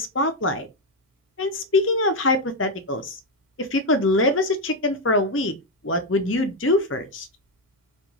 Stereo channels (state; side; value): normal; both; correlation 0.06